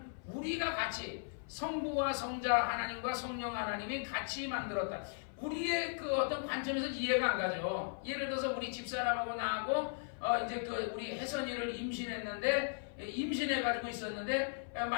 우리가 같이 성부와 성자 하나님과 성령 하나님이 같이 만들었다. 우리의 그 어떤 관점에서 이해가 안 가죠. 예를 들어서 우리 집사람하고 나하고 이제 그 우리 혜선이를 임신해가지고 있었는데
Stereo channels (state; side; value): silent; right; 53 dB below the other